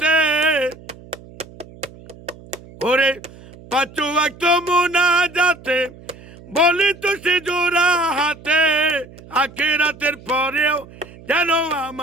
ওরে পাঁচ ওয়াক্ত মুনাজাতে বলি তো সে জোড়া হাতে, আখিরাতের পরেও যেন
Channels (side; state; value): right; noise; hum, 20 dB below the sound